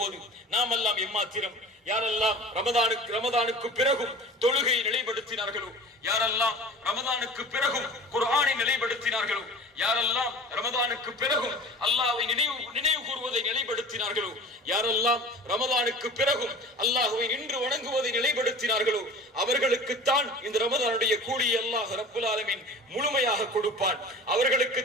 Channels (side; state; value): both; normal; correlation 0.39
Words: நாம் எல்லாம் எம்மாத்திரம், யாரெல்லாம் ரமதானுக்கு பிறகும் தொழுகையை நிலைப்படுத்தினார்களோ, யாரெல்லாம் ரமதானுக்கு பிறகும் குர்ஆனை நிலைப்படுத்தினார்களோ, யாரெல்லாம் ரமதானுக்கு பிறகும் அல்லாஹ்வை நினைவு கூறுவதை நிலைப்படுத்தினார்களோ, யாரெல்லாம் ரமதானுக்கு பிறகும் அல்லாஹ்வை நின்று வணங்குவதை நிலைப்படுத்தினார்களோ அவர்களுக்குத்தான் இந்த ரமதானுடைய கூலியை அல்லாஹ் ரப்பல் ஆலமீன் முழுமையாக கொடுப்பான்.